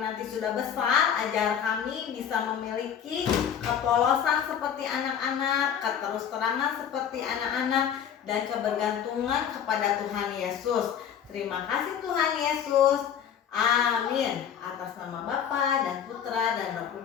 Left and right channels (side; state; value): right; quieter; 8.6 dB